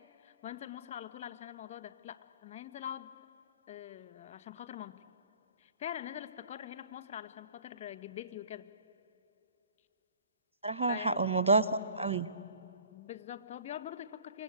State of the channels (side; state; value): both; inverted; correlation -0.48